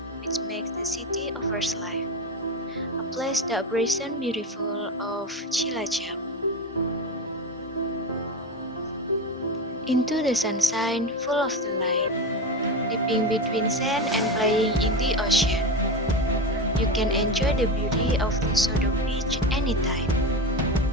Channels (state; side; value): normal; both; correlation 0.20